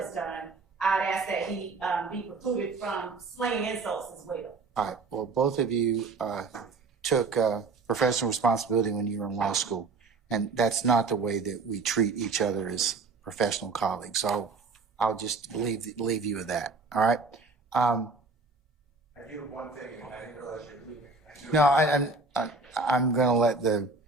done. I'd ask that he be precluded from slinging insults as well. All right. Well, both of you took professional responsibility when you were in law school, and that's not the way that we treat each other as professional colleagues. So I'll just leave you with that. All right. I do one thing, and I didn't realize you're leaving. No, I'm going to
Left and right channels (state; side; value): quieter; left; 4.0 dB